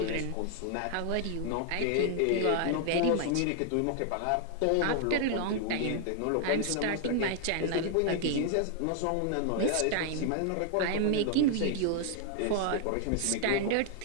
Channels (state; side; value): different; both; correlation 0.00